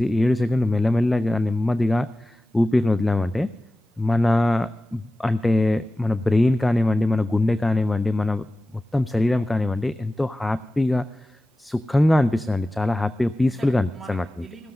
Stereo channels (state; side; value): normal; both; correlation 0.96